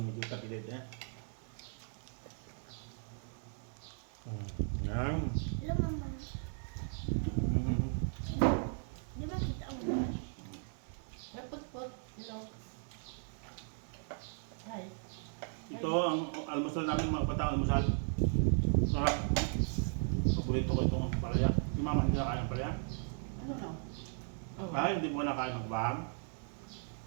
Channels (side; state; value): left; silent; 53 dB below the other